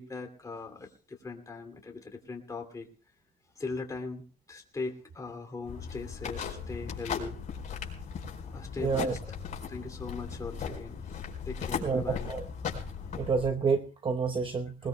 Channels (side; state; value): both; normal; correlation 0.56